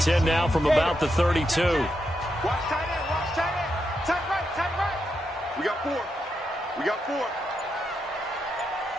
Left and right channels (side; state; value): both; normal; correlation 0.83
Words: now from about the 32. Watch tight end, watch tight end. Tight right. We got 4. We got 4.